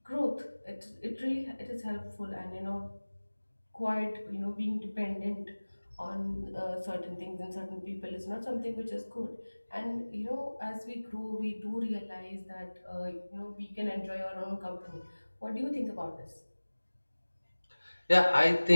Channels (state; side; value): inverted; both; correlation -1.00